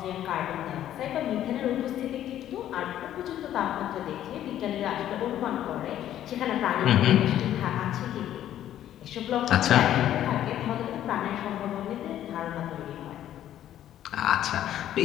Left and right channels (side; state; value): right; quieter; 11.7 dB